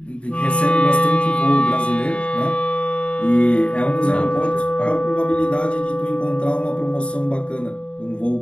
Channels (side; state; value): right; late; 0.060 ms